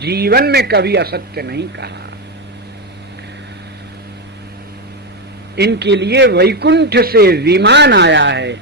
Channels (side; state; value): both; normal; correlation 0.09